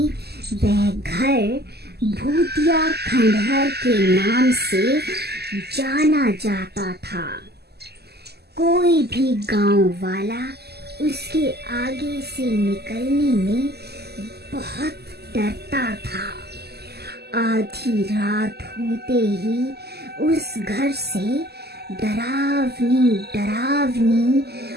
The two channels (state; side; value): late; left; 0.47 ms